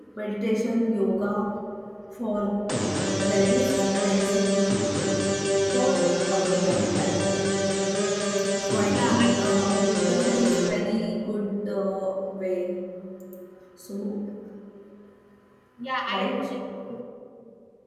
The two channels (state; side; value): identical; both; correlation 1.00